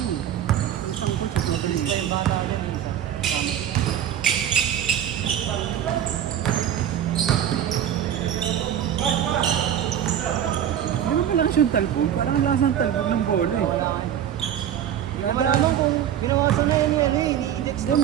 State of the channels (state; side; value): quieter; left; 10.1 dB